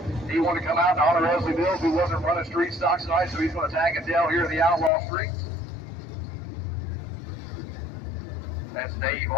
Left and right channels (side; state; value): right; drops out; at 4.9 s